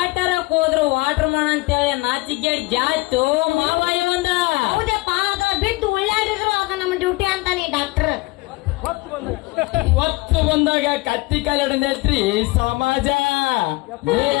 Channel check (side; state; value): right; quieter; 22.2 dB